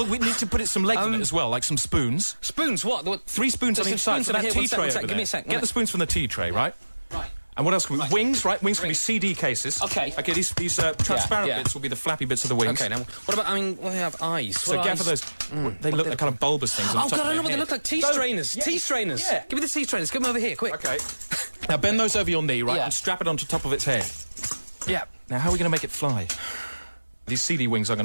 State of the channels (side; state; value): both; inverted; correlation -1.00